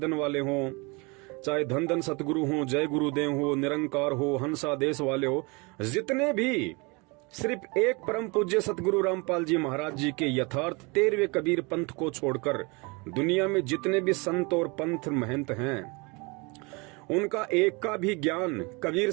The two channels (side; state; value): left; quieter; 28.3 dB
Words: वाले हो, चाहे धन धन सतगुरु हो, जय गुरुदेव हो, निरंकार हो, हंसा देश वाले हो, जितने भी सिर्फ एक परम पूज्य सतगुरु रामपाल जी महाराज जी के यथार्थ 13वें कबीर पंथ को छोड़कर दुनिया में जितने भी संत और पंथ महंत हैं, उनका एक का भी ज्ञान कबीर